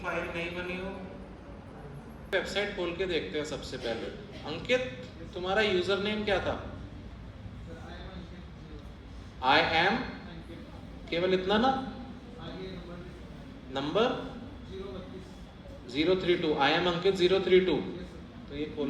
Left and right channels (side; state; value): both; identical; correlation 1.00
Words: फाइल नहीं बनी हो, वेबसाइट खोल के देखते हैं सबसे पहले। अंकित, तुम्हारा यूजर नेम क्या था? आई एम, केवल इतना ना, नंबर 032। आई एम अंकित 032। तो ये